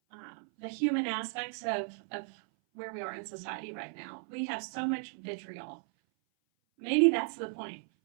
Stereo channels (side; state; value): left; silent; 55 dB below the other